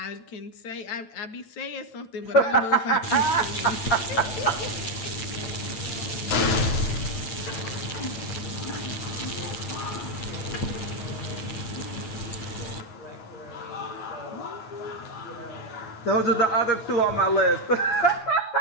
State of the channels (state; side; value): late; right; 9.1 ms